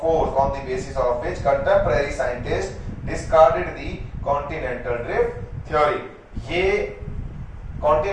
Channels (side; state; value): both; identical; correlation 1.00